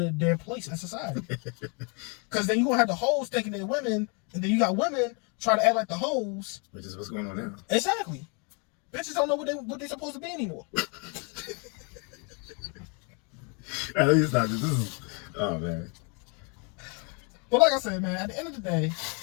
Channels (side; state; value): right; quieter; 35.0 dB